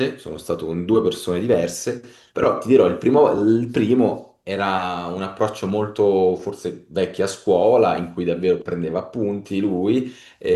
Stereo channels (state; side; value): identical; both; correlation 1.00